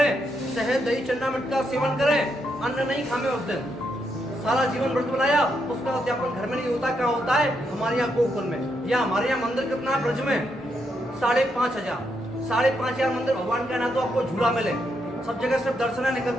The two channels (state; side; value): normal; both; correlation 0.79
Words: शहद दही चन्ना मिर्च का सेवन करें, अन्न नहीं खामे उस दिन, सारा जीवन व्रत बनाया, उसका उद्यापन घर में नहीं होता। क्या होता है? हमारे यहाँ गोकुल में। या हमारे यहाँ मंदिर कितना है ब्रज में? 5,500 मंदिर भगवान का ना तो आपको झूला मिले, सब जगह सिर्फ दर्शन